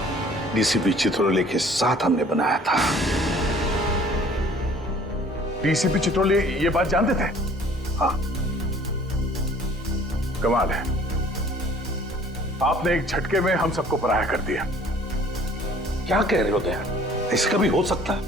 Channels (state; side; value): normal; both; correlation 0.53